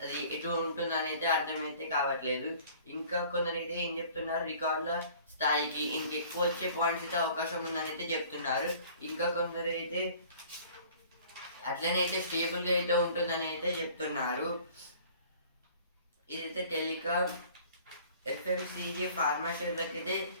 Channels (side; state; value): both; inverted; correlation -0.50